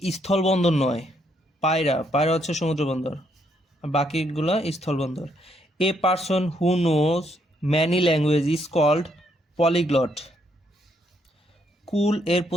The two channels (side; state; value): both; normal; correlation 0.73